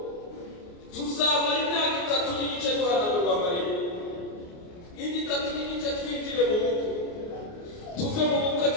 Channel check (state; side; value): late; right; 28 ms